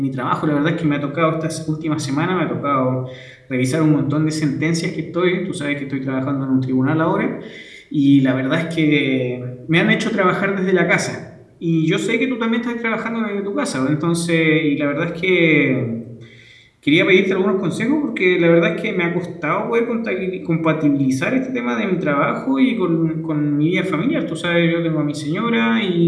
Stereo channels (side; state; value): both; identical; correlation 1.00